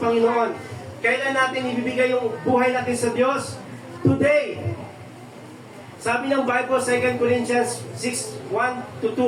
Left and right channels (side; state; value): both; identical; correlation 1.00